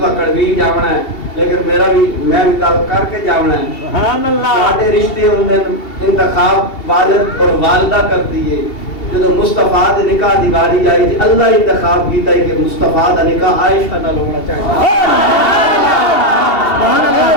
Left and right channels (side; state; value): right; late; 2.7 ms